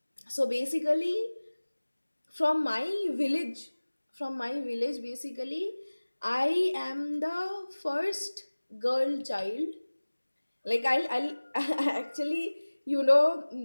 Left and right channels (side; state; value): both; inverted; correlation -1.00